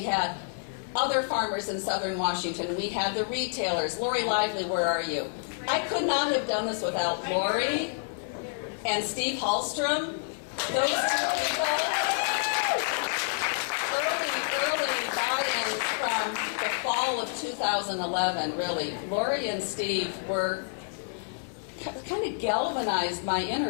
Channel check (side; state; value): right; silent; digital silence